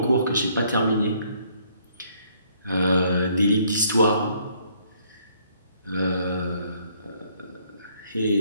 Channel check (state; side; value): inverted; both; correlation -0.65